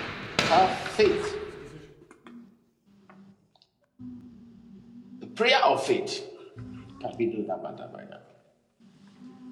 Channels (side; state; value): both; identical; correlation 1.00